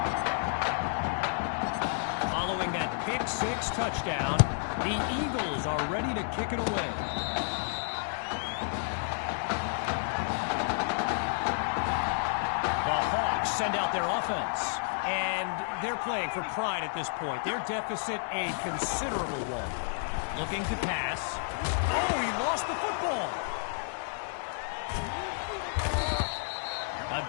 Following that pick-6 touchdown, the Eagles are ready to kick it away. The Hawks send out their offense, and they're playing for pride at this point. Their deficit a considerable one. Looking to pass. Oh, he lost the football. A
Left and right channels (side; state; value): right; silent; digital silence